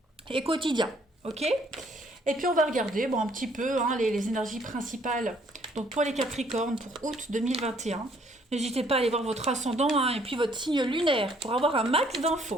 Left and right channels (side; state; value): both; normal; correlation 0.64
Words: et quotidiens. Ok? Et puis, on va regarder un petit peu les énergies principales. Donc, pour les Capricornes, pour août 2021. N'hésitez pas à aller voir votre ascendant et puis votre signe lunaire pour avoir un max